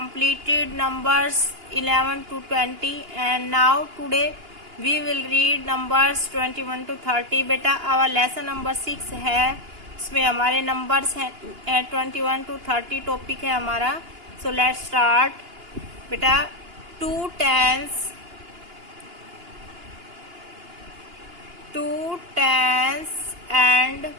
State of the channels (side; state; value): left; late; 2.9 ms